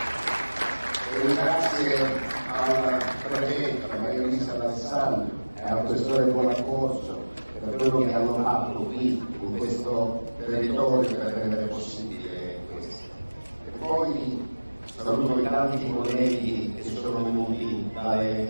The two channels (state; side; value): inverted; both; correlation -1.00